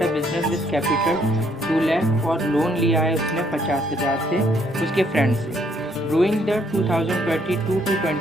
a business with capital 2 lakh और लोन लिया है उसने 50,000 से उसके फ्रेंड से। During the 2022 to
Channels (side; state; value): both; normal; correlation 0.68